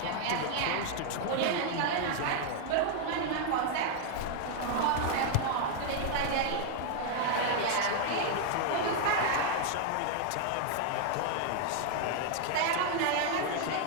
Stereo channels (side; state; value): both; different; correlation 0.00